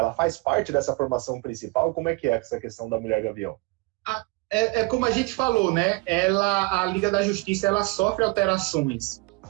faz parte dessa formação principal? Como é que é essa questão da Mulher Gavião? É como a gente falou, né? A Liga da Justiça, ela sofre alterações,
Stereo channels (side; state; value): left; quieter; 26.1 dB